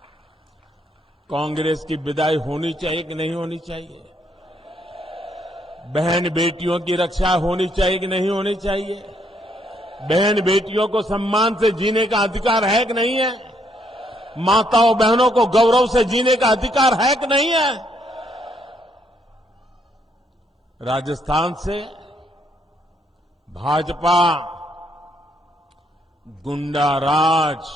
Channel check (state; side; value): normal; both; correlation 0.72